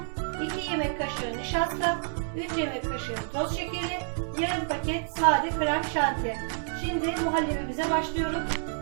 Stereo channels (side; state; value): left; silent; digital silence